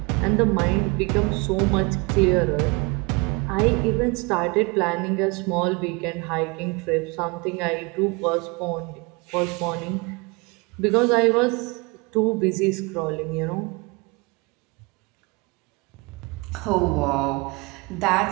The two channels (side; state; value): left; quieter; 27.4 dB